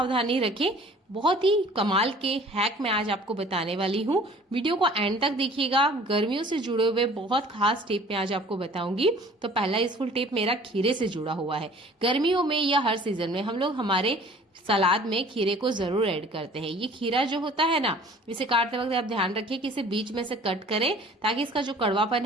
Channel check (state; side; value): normal; both; correlation 0.50